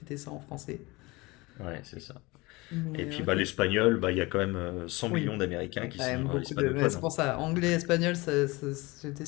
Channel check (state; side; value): quieter; right; 23.2 dB